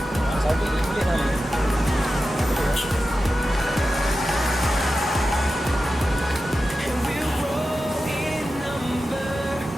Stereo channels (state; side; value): normal; both; correlation 0.92